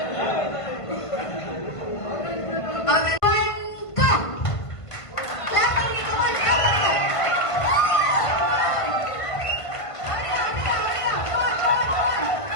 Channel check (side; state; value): right; late; 1.5 ms